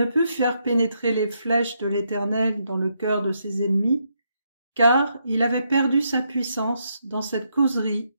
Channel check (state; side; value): inverted; both; correlation -0.78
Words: put faire pénétrer les flèches de l'Éternel dans le cœur de ses ennemis, car il avait perdu sa puissance dans cette causerie